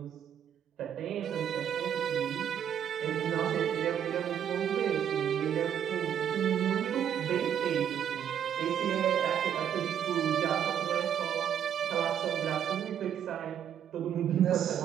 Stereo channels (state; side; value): quieter; left; 9.2 dB